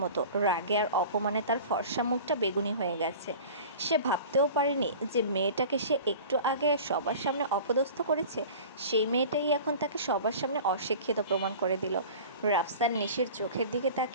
মতো। রাগে আর অপমানে তার ফর্সা মুখটা বেগুনি হয়ে গেছে। সে ভাবতেও পারেনি যে মেয়েটাকে সে একটু আগে সবার সামনে অপদস্থ করেছে, সেই মেয়েটাই এখন তাকে সবার সামনে অশিক্ষিত প্রমাণ করে দিল। রাফসান নিশির চোখের দিকে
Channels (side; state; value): both; inverted; correlation -0.39